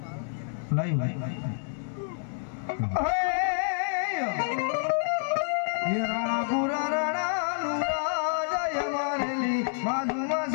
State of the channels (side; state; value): right; silent; digital silence